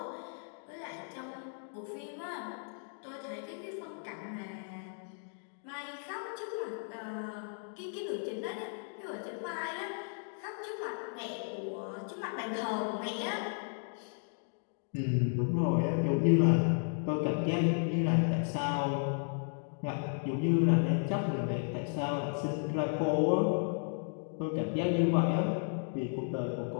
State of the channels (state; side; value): silent; right; 55 dB below the other